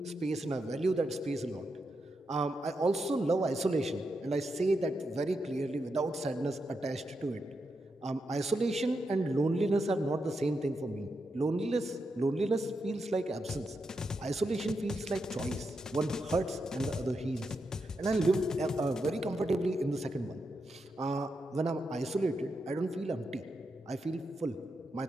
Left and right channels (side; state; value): both; normal; correlation 0.85